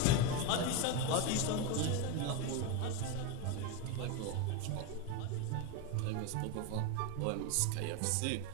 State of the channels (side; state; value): both; different; correlation 0.04